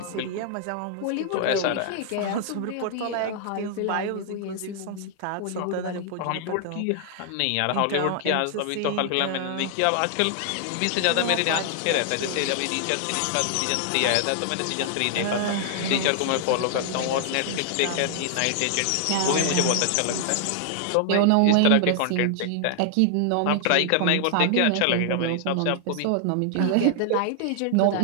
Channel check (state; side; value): different; both; correlation 0.00